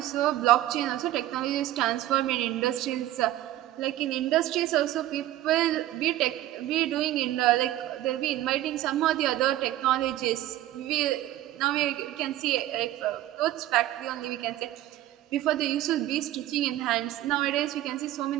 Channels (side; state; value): left; quieter; 14.4 dB